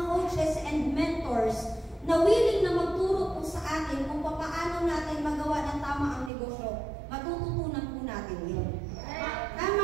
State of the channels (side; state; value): left; drops out; at 6.3 s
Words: coaches and mentors na willing na magturo po sa atin kung paano natin magawa ng tama ang negosyo, matututunan po natin yun.